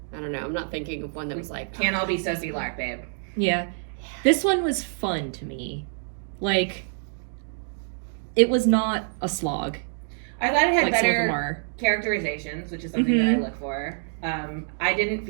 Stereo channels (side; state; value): left; silent; 61 dB below the other